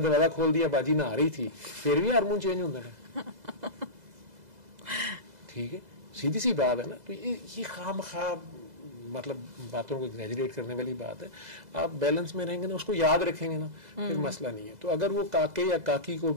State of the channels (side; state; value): left; late; 2.0 ms